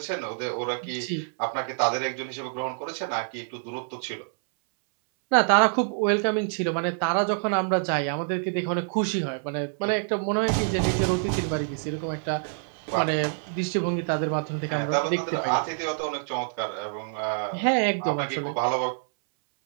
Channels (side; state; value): left; silent; 60 dB below the other